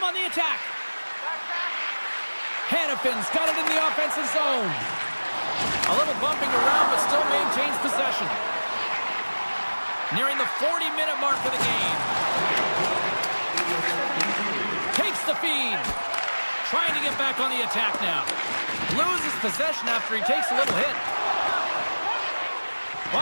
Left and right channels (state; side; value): inverted; both; correlation -1.00